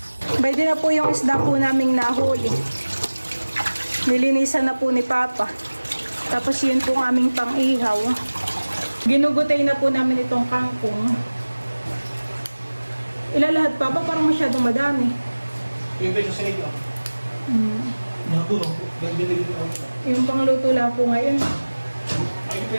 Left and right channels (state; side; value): inverted; both; correlation -1.00